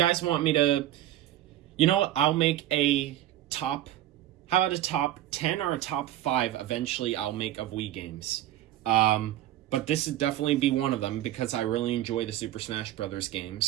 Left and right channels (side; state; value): left; quieter; 13.2 dB